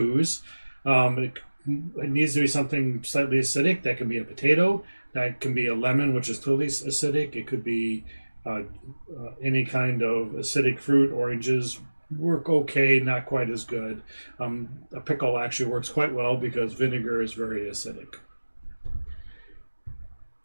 It needs to be something slightly acidic. That can be a potato. That can be a lemon, which is totally acidic. It could be any kind of acidic fruit. Oranges work okay, not quite as good. A pickle actually works quite well because vinegar is very acidic.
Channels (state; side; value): inverted; both; correlation -1.00